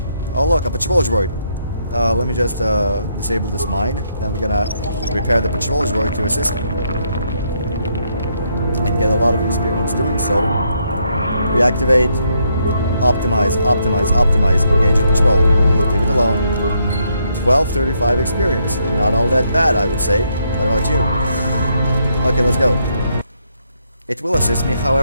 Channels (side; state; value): both; inverted; correlation -0.75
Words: Oh look, a patrol droid. Let me just disable this mine. Then we're gonna repair the patrol droid to assist me. And get a lot of experience doing so. Reactivate. Optimize, optimize, optimize. Engage the patrol. Leave it alone. 1235 experience. Not all that bad, I would say. What about you? Okay, let's go. It will assist me,